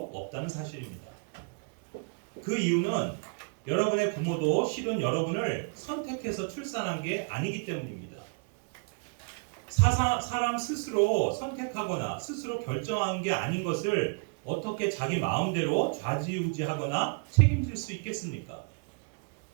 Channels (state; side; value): quieter; left; 37.5 dB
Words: 없다는 사실입니다. 그 이유는 여러분의 부모도 실은 여러분을 선택해서 출산한 게 아니기 때문입니다. 사람 스스로 선택하거나 스스로 결정한 게 아닌 것을 어떻게 자기 마음대로 좌지우지하거나 책임질 수 있겠습니까?